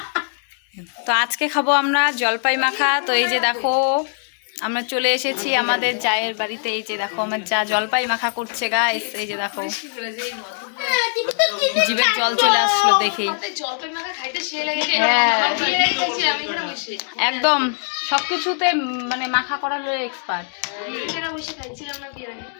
তো আজকে খাবো আমরা জলপাই মাখা। তো এই যে দেখো আমরা চলে এসেছি আমাদের জায়ের বাড়িতে। এই যে দেখো আমার যা জলপাই মাখা করছে গাইস। এই যে দেখো জিভের জল চলে আসলো দেখেই। হ্যাঁ একদম সবকিছুতে মানে মাখা করার এক্সপার্ট।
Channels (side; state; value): right; silent; 63 dB below the other